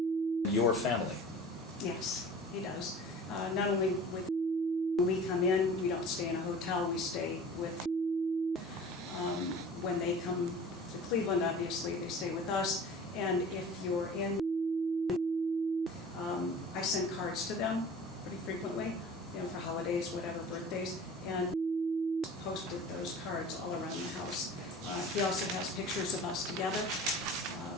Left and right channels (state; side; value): normal; both; correlation 0.41